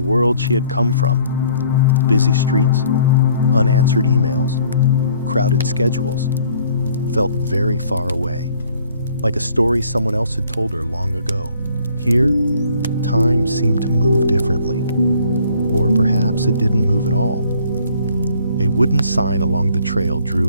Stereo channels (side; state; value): both; inverted; correlation -0.59